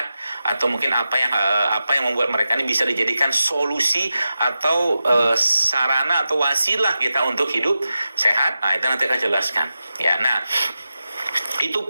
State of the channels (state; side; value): inverted; both; correlation -0.92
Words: atau mungkin apa yang membuat mereka ini bisa dijadikan solusi atau sarana atau wasilah kita untuk hidup sehat. Nah, itu nanti akan jelaskan. Ya, nah itu